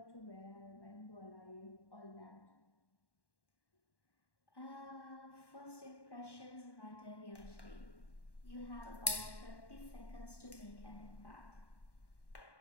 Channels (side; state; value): right; late; 1.1 ms